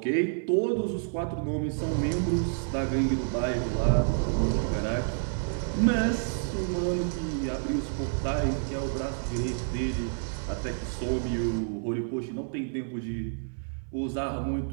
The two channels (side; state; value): left; silent; 59 dB below the other